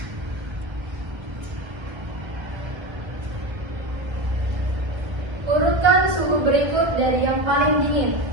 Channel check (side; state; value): left; late; 1.3 ms